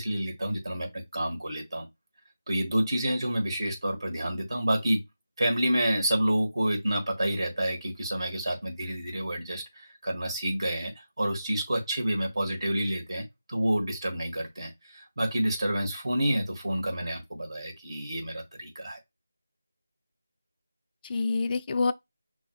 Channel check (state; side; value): inverted; both; correlation -0.92